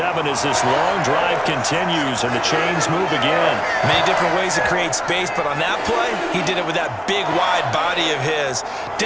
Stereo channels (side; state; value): both; identical; correlation 1.00